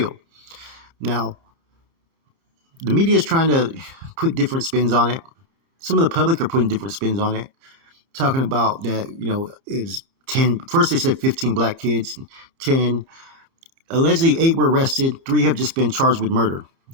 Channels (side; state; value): left; late; 31 ms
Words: Now, the media is trying to put different spins on it. Some of the public are putting different spins on it, talking about that, you know, it's 10. First they said 15 black kids, 10. Allegedly 8 were arrested. 3 have just been charged with murder